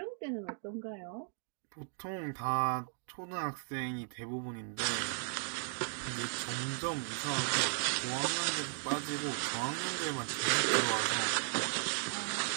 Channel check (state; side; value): silent; left; 54 dB below the other